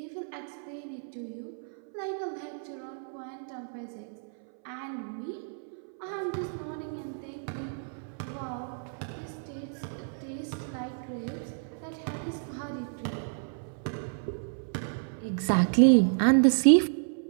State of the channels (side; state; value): left; silent; 57 dB below the other